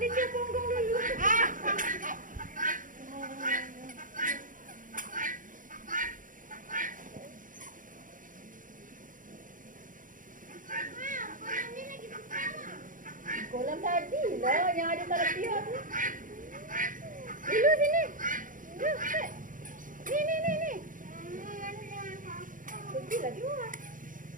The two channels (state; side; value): late; left; 0.39 ms